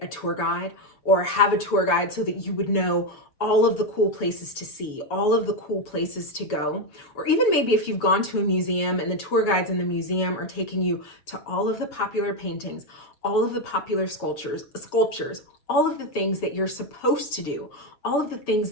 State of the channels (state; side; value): late; right; 7.0 ms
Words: a tour guide or have a tour guide so that you would know all of the cool places to see, all of the cool places to go? Or even maybe if you've gone to a museum and the tour guides in the museum are taking you to all of the popular paintings, all of the popular sculptures, all of the things that you're supposed to do, all of the things